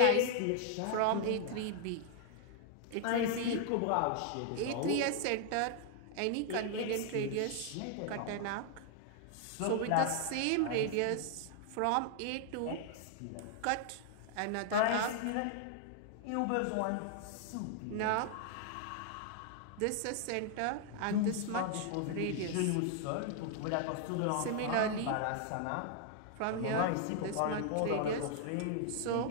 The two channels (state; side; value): different; both; correlation 0.00